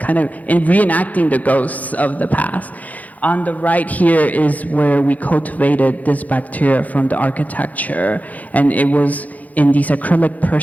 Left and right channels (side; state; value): right; late; 0.077 ms